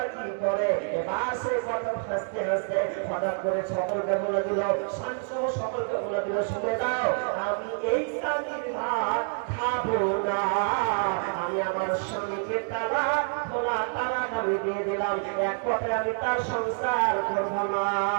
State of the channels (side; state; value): left; silent; 60 dB below the other